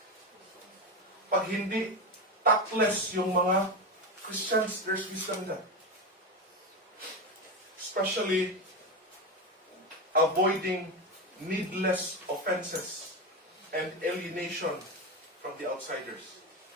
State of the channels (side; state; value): both; normal; correlation 0.16